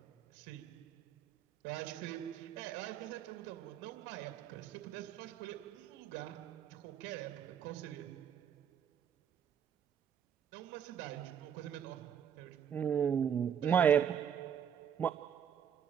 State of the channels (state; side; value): quieter; left; 8.6 dB